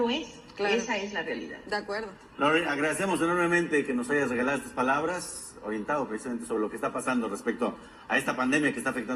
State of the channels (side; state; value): both; identical; correlation 1.00